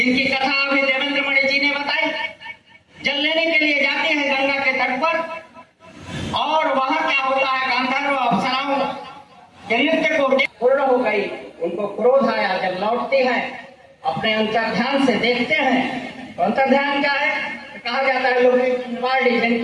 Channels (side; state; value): both; identical; correlation 1.00